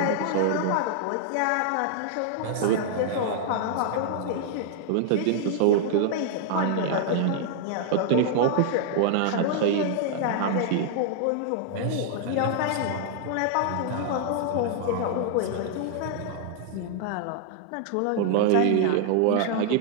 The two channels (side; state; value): both; different; correlation 0.00